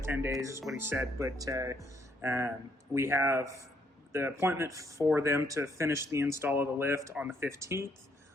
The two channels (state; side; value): normal; both; correlation 0.71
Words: days is what he said. But we have the appointment for them to finish the install of the lift on the 15th,